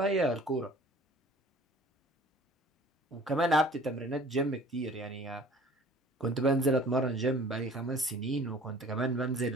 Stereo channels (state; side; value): normal; both; correlation 0.49